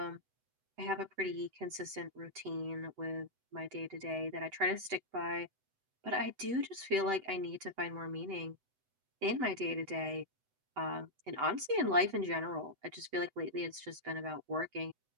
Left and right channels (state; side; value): late; left; 8.0 ms